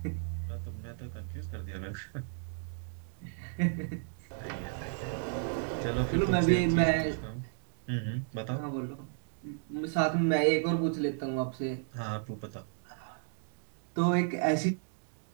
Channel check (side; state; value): left; silent; digital silence